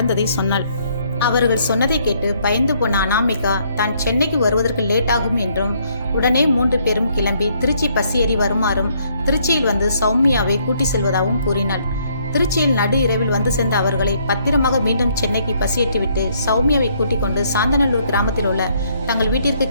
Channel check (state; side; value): inverted; both; correlation -0.68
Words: சொன்னாள். அவர்கள் சொன்னதை கேட்டு பயந்து போன அனாமிகா தான் சென்னைக்கு வருவதற்கு லேட் ஆகும் என்றும் உடனே 3 பேரும் கிளம்பி திருச்சி பஸ் ஏறி வருமாறும் திருச்சியில் வந்து சௌமியாவை கூட்டி செல்வதாகவும் கூறினாள். திருச்சியில் நடு இரவில் வந்து சேர்ந்த அவர்களை பத்திரமாக மீண்டும் சென்னைக்கு பஸ் ஏற்றிவிட்டு சௌமியாவை கூட்டிக் கொண்டு சாந்தநல்லூர் கிராமத்தில் உள்ள தங்கள் வீட்டிற்கு